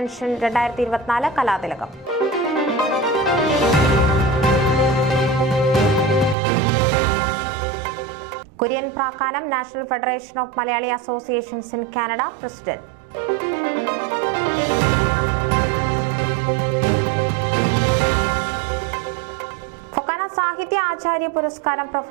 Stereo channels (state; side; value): drops out; left; at 6.4 s